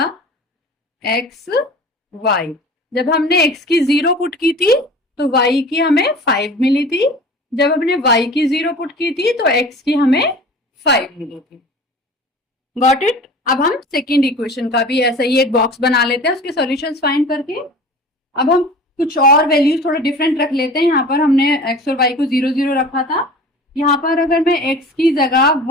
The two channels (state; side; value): normal; both; correlation 0.41